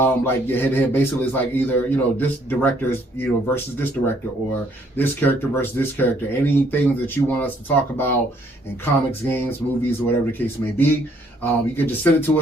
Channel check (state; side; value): normal; both; correlation 0.66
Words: your head-to-head. Basically, it's like either, this director's, versus this director, or this character versus this character. Anything that you want us to talk about in comics, games, movies, or whatever the case may be. You can just send it to